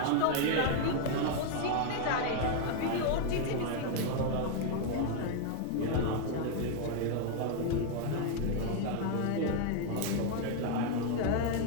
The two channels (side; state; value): both; different; correlation 0.01